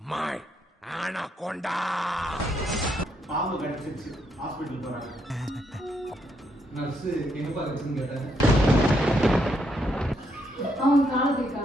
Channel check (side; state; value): both; normal; correlation 0.76